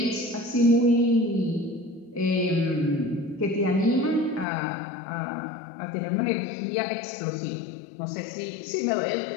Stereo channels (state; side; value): drops out; right; at 4.5 s